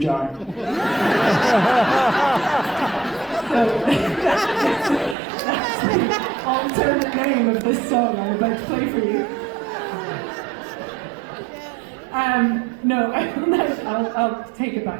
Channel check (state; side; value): drops out; left; at 5.2 s